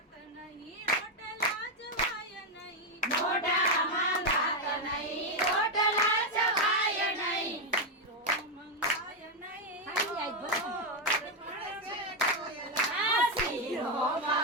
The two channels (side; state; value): both; normal; correlation 0.04